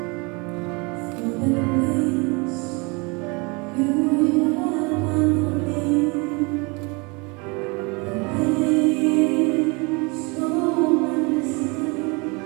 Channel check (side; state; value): left; quieter; 29.2 dB